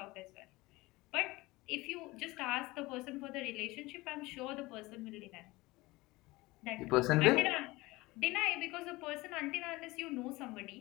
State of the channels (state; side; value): quieter; right; 21.1 dB